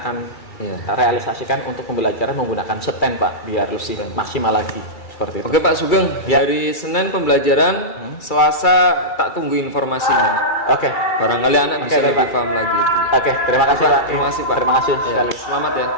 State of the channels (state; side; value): late; right; 2.3 ms